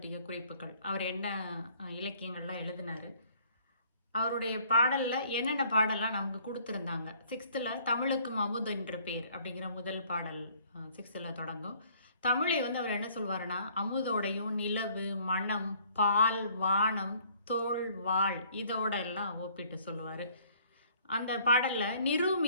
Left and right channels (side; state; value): both; inverted; correlation -0.59